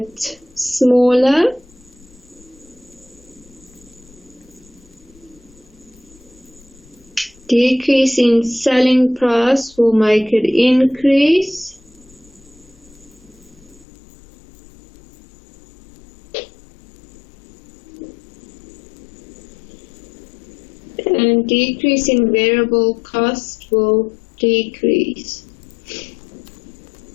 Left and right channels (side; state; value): right; drops out; at 13.9 s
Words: smaller. Decrease in selling price will make it increase. And decrease in variable cost will decrease.